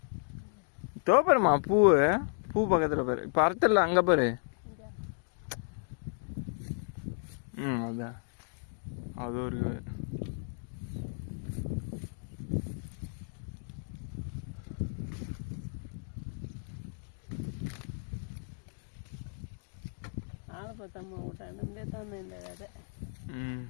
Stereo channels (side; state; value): right; silent; 55 dB below the other